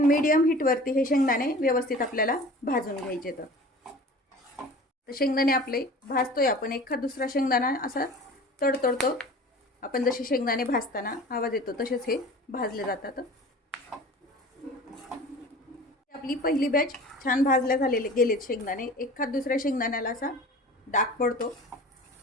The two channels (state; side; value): normal; both; correlation 0.41